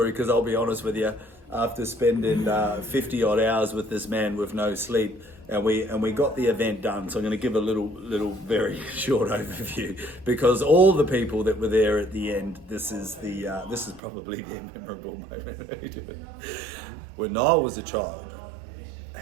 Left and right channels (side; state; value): left; drops out; at 14.0 s